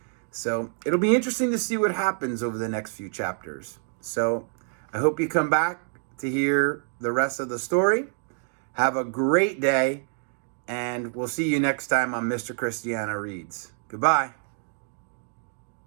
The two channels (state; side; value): silent; left; 57 dB below the other